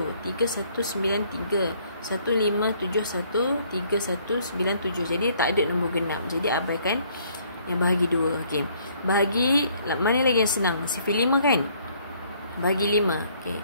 3, 1, 9, 3, 1, 5, 7, 1, 3, 1, 9, 7. Jadi tak ada nombor genap. Jadi abaikan yang bahagi 2. Okey. Bahagi mana lagi yang senang? Sifar 5 kan? Bahagi 5. Okey.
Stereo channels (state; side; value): inverted; both; correlation -0.64